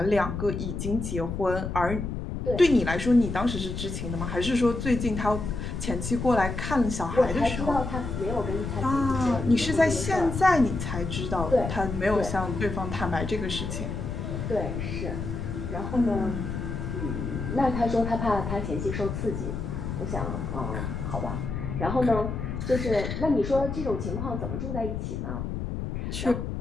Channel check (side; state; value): left; noise; rumble, 4 dB below the sound